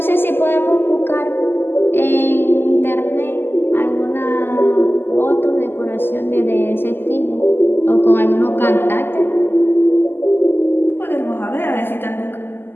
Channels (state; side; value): late; right; 0.10 ms